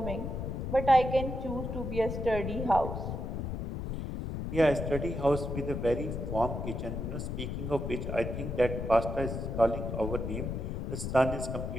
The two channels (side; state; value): left; noise; rumble, 4 dB below the sound